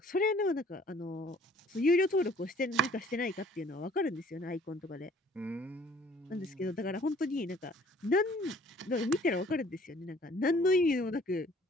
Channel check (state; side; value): normal; both; correlation 0.55